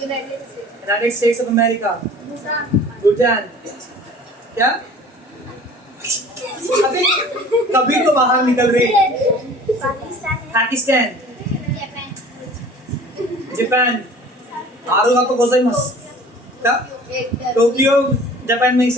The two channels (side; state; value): both; normal; correlation 0.46